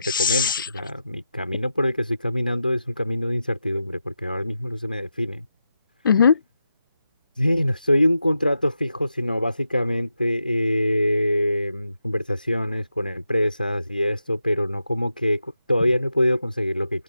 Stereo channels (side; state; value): both; inverted; correlation -0.87